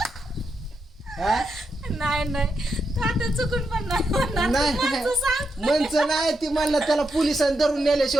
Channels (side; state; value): both; normal; correlation 0.84